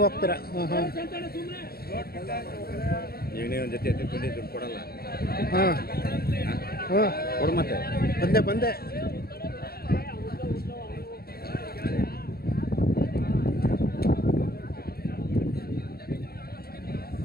ಹೋಗ್ತೀರಾ? ಹಾಂ ಹಾಂ. ಜೊತೆ ದುಡ್ಡು ಕೊಡಲ್ಲ. ಹಾಂ ಹಾಂ, ಕೊಡು ಮತ್ತೆ. ಬಂದೆ.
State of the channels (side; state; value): right; late; 0.45 ms